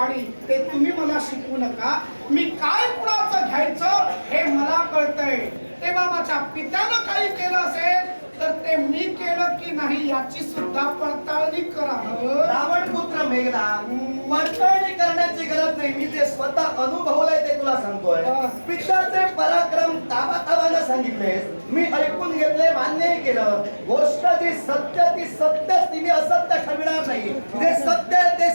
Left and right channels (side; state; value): both; inverted; correlation -1.00